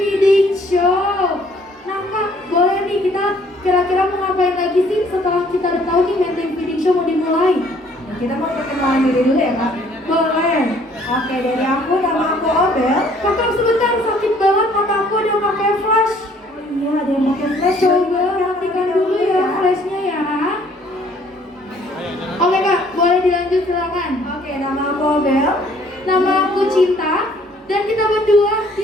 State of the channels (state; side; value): normal; both; correlation 0.60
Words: Show. Nah Kak, boleh nih kita kira-kira mau ngapain lagi sih setelah kita udah tahu nih Menteng Feeding Show mau dimulai? Kita mau perkenalan diri dulu ya Kak? Boleh. Oke, dari aku, nama aku Obel. Kakak sebentar, sakit banget mataku udah pakai flash. Iya, ada yang pakai flash. Coba matikan dulu ya flashnya ya. Oke Kak, boleh dilanjut silakan. Oke, nama aku Obel. Nama aku Cinta dan kita berdua